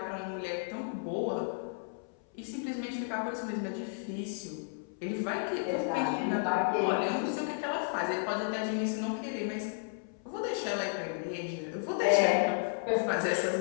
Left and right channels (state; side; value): silent; right; 56 dB below the other